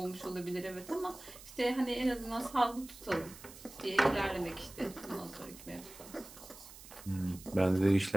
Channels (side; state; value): right; noise; hiss, 17 dB below the sound